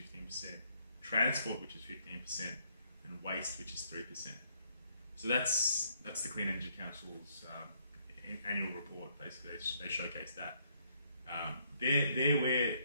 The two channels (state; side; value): inverted; both; correlation -0.70